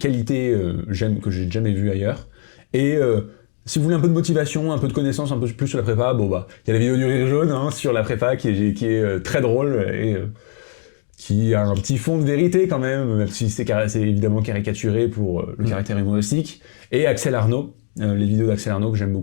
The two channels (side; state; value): right; silent; digital silence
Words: qualité que j'ai jamais vue ailleurs. Et si vous voulez un peu de motivation, un peu de connaissance, un peu plus sur la prépa, il y a la vidéo du rire jaune sur la prépa qui est très drôle et qui a un petit fond de vérité quand même si c'est évidemment caricaturé pour le caractère humoristique. Et Axel Arnaud, les vidéos d'Axel Arnaud que j'aime